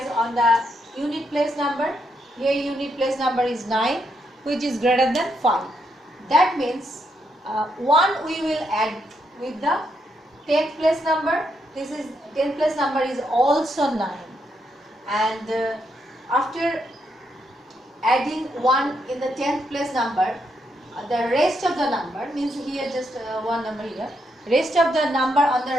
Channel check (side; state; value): both; normal; correlation 0.78